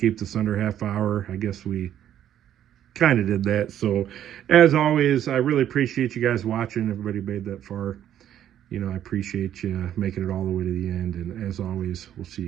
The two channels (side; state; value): left; quieter; 10.8 dB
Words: this under half hour. I guess we kind of did that. So, as always, I really appreciate you guys watching. Everybody made that far. You know, I appreciate you making it all the way to the end. And as always, we'll see